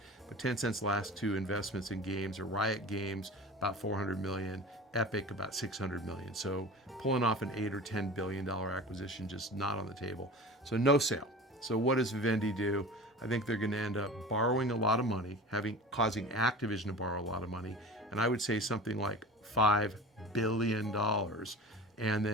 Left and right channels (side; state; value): both; normal; correlation 0.36